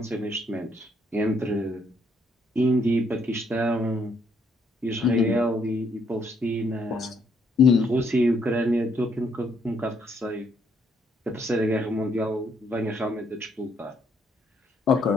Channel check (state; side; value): normal; both; correlation 0.71